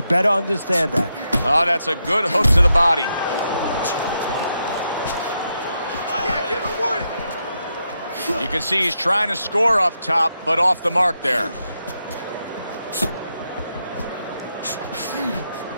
better understand that. Oh, that's a good hook to the body. You can see he's trying to score up top, but off the mark there.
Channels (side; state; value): both; inverted; correlation -0.83